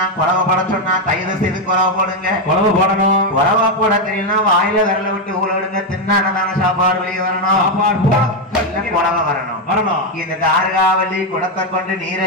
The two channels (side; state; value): both; normal; correlation 0.05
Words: குறவை போட சொன்னா தயவு செய்து குறவை போடுங்க. குறவை போடணும். குறவா போட தெரியலன்னா வாயில விரல விட்டு ஊழடுங்க. தின்னானதான சாப்பாடு வெளியே வரணும். குறவை வரணும். இந்த தாருகாவல்லி குடத்தை கொண்டு நீரை